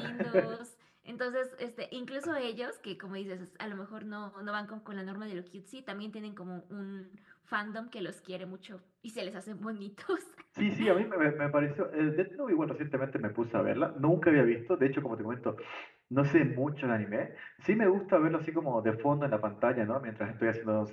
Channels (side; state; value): both; identical; correlation 1.00